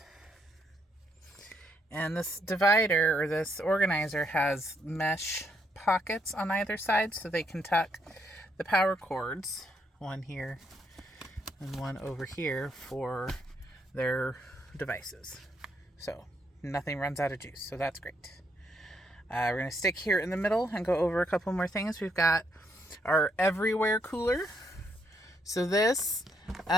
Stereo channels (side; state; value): both; normal; correlation 0.74